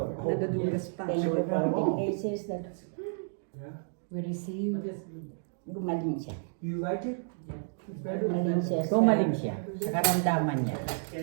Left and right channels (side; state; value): left; silent; digital silence